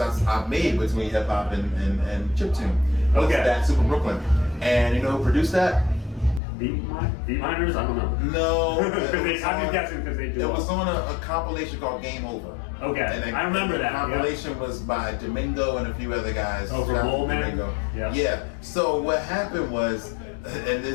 made between hip hop and chiptune. Okay. That Super Brooklyn, and you know who produced that? Beat Miners? I don't know. No. I'm just guessing because they do. It was on a compilation called Game Over. Okay, and I remember that. The compilation was by Domingo and a few other guys. Oh, from Bullman? Yeah. So what happened was, and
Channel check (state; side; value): drops out; right; at 6.4 s